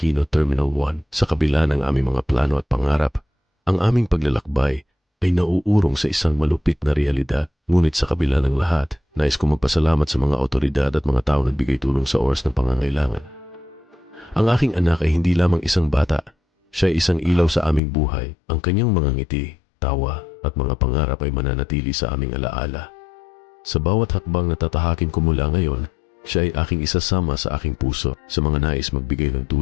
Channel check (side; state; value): right; drops out; at 17.8 s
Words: Terminal 1. Sa kabila ng aming mga plano at pangarap, ang aming paglalakbay ay nauurong sa isang malupit na realidad. Ngunit sa kabila ng lahat, nais kong magpasalamat sa mga otoridad at mga tao na nagbigay tulong sa oras ng pangangailangan. Ang aking anak ay hindi lamang isang bata. Siya ay isang ilaw sa aming buhay. Ang kanyang mga ngiti, tawa, at mga pangarap ay mananatili sa aming alaala. Sa bawat hakbang na tatahakin ko mula ngayon, siya ay aking isasama sa aking puso. Sa mga nais magbigay ng